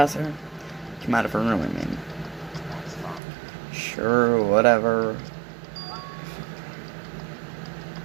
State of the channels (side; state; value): left; drops out; at 3.2 s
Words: her? Come out of her room, I mean. Sure, whatever.